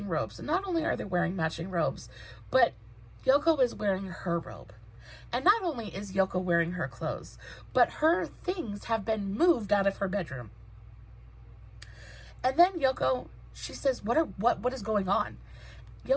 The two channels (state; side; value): identical; both; correlation 1.00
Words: robes. And not only are they wearing matching robes, but Yoko is wearing her robe. And not only is Yoko wearing her clothes, but her things have been moved out of her bedroom. And then Yoko, she says, what is going on?